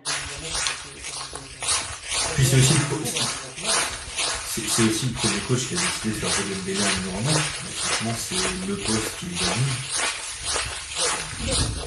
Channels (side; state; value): both; identical; correlation 1.00